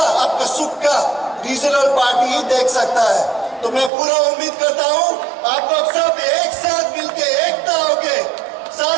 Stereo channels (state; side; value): drops out; left; at 3.9 s